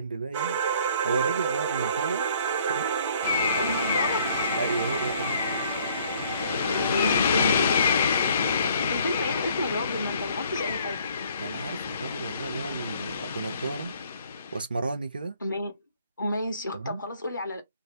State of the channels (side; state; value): both; inverted; correlation -0.59